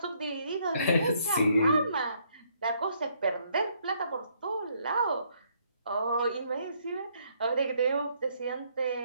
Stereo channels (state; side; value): inverted; both; correlation -0.69